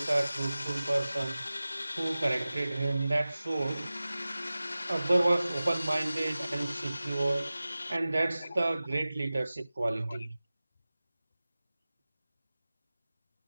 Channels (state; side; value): inverted; both; correlation -0.97